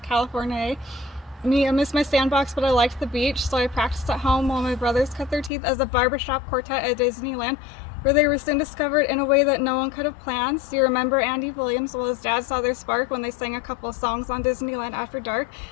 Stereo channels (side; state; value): right; drops out; at 5.5 s